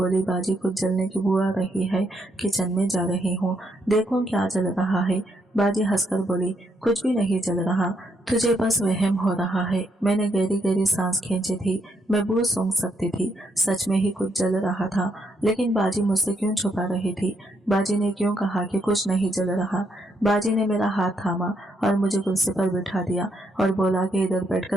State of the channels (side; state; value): both; normal; correlation 0.76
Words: बाजी कुछ जलने की बू आ रही है, किचन में जा रही हूँ, देखो क्या जल रहा है। बाजी हंसकर बोली, कुछ भी नहीं जल रहा, तुझे बस वहम हो रहा है। मैंने गहरी गहरी सांस खींची थी। मैं बू सूंघ सकती थी, सच में ही कुछ जल रहा था। लेकिन बाजी मुझसे क्यों छुपा रही थी? बाजी ने क्यों कहा कि कुछ नहीं जल रहा? बाजी ने मेरा हाथ थामा और मुझे कुर्सी पर बिठा दिया और बोला कि इधर